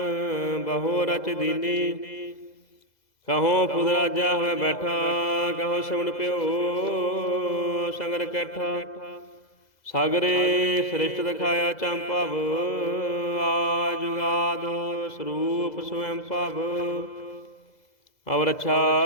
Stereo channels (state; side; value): late; right; 2.0 ms